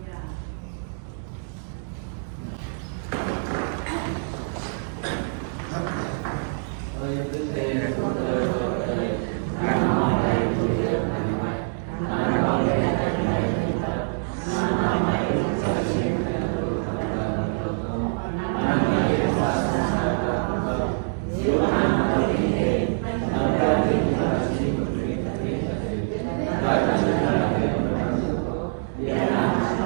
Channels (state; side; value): silent; left; digital silence